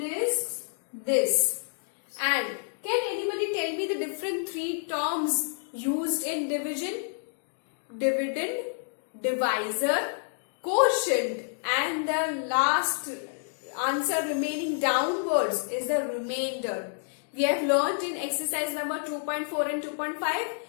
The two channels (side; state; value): right; silent; digital silence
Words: is this. And can anybody tell me the different three terms used in division? Dividend, divisor, quotient, and the last answer remaining downwards is the remainder. We have learned in exercise number 2.4 and 2.5